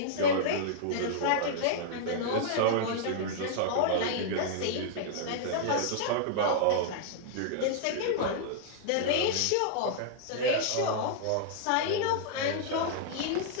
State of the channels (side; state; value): both; different; correlation -0.01